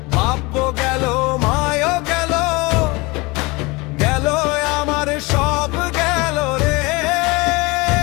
বাপ গেল, মায়ও গেল, গেল আমার সব গেল রে।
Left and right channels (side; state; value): right; quieter; 24.9 dB